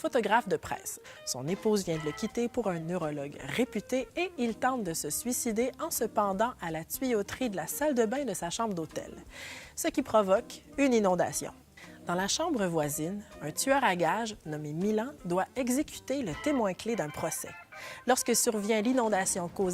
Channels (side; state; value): both; identical; correlation 1.00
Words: de presse. Son épouse vient de le quitter pour un neurologue réputé et il tente de se suicider en se pendant à la tuyauterie de la salle de bain de sa chambre d'hôtel, ce qui provoque une inondation. Dans la chambre voisine, un tueur à gages nommé Milan doit exécuter le témoin clé d'un procès. Lorsque survient l'inondation